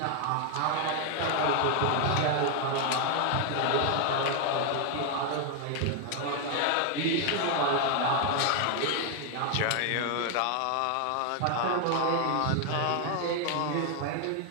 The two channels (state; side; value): different; both; correlation 0.00